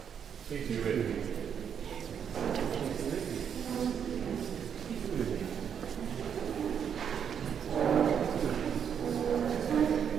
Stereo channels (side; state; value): left; quieter; 7.9 dB